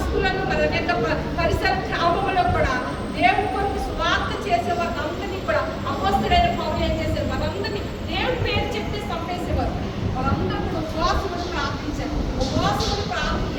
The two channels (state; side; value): identical; both; correlation 1.00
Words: మరి అనేక పరిసర గ్రామంలో కూడా దేవుని కొరకు సువార్త చేసే వారందరినీ కూడా అపోస్తలుడైన పౌలు ఏం చేశారు? వారందరినీ దేవుని పేరు చెప్తే చంపేసేవారు. వాళ్ళందరూ కూడా ఉపవాసములు ప్రార్థించారు. ఉపవాసములు ప్రార్థన